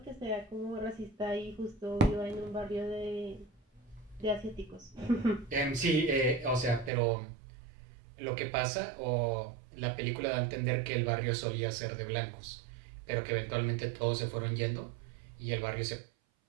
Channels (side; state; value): left; drops out; at 6.9 s